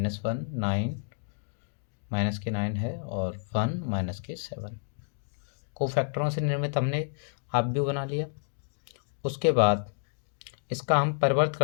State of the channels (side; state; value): right; silent; digital silence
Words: 9 माइनस के 9 है और 1 माइनस के 7। कोफैक्टरों से निर्मित हमने अपव्यू बना लिया। उसके बाद इसका हम परिवर्त